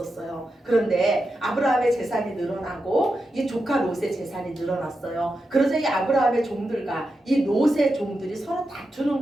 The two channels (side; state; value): both; normal; correlation 0.88